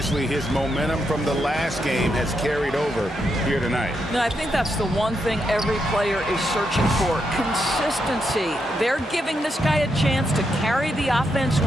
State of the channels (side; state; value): both; normal; correlation 0.81